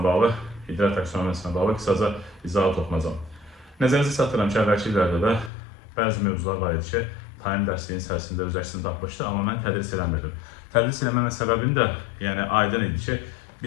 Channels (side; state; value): right; drops out; at 5.5 s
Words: bağlı, idra taksonomiyasına bağlı qısaca izahat oxunacağam. Nəzərinizə çatdırıram ki, əvvəlki illərdə də bəzi mövzular var idi ki, talim dərsliyin içərisində öz əksini tapmışdı, amma mən tədris eləmirdim. Tədris eləməmə səbəbim də aydın idi ki,